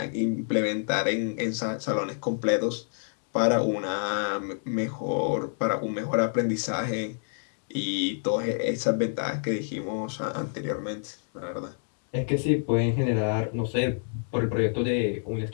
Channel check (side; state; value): right; silent; digital silence